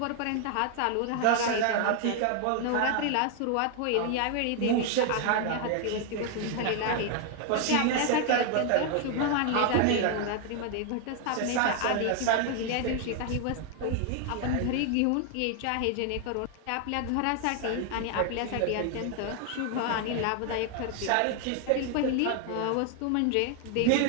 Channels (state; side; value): different; both; correlation 0.00